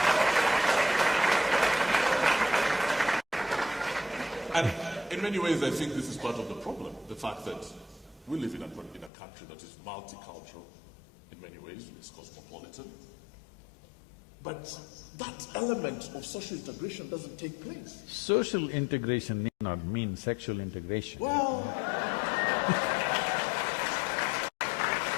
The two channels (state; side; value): drops out; right; at 9.1 s